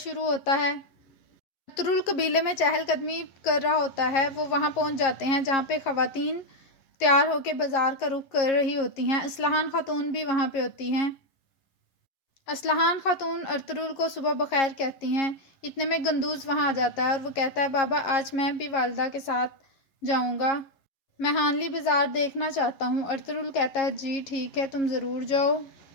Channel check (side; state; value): right; late; 11 ms